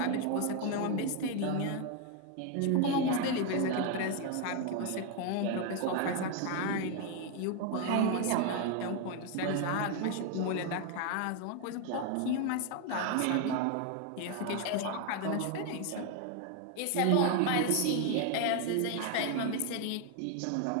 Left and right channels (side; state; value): both; different; correlation 0.01